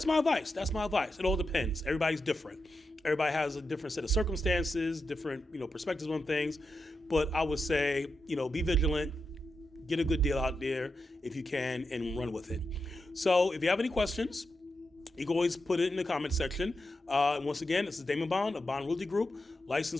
my advice. It all depends. Everybody's different. Everybody has a different set of circumstances, different perspectives on things. But I would say be vigilant. Get a good deal out there if you can and run with it. So if you have any questions, you can always put it in the comment section. Once again, this is Damon Bond of Bond Realty Group,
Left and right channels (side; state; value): both; normal; correlation 0.87